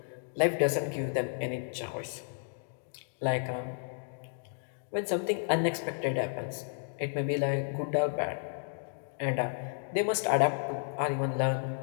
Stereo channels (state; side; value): silent; right; digital silence